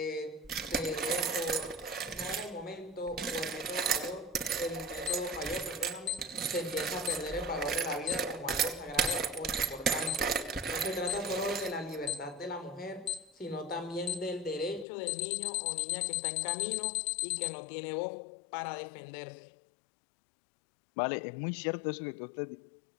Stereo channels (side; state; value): right; drops out; at 14.9 s